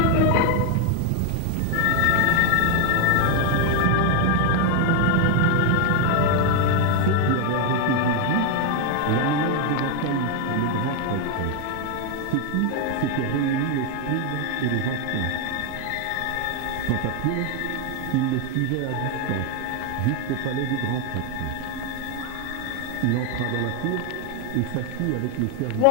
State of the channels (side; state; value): both; different; correlation 0.01